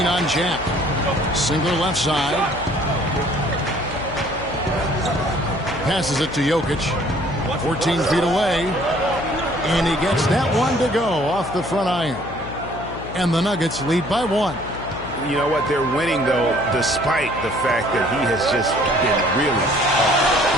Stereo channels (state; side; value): noise; left; hum, 12 dB below the sound